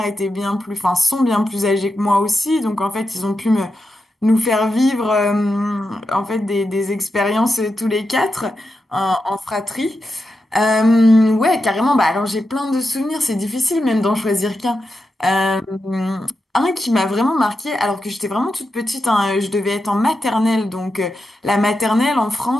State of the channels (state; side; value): normal; both; correlation 0.88